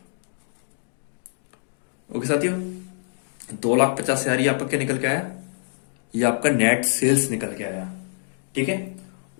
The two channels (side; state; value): right; silent; digital silence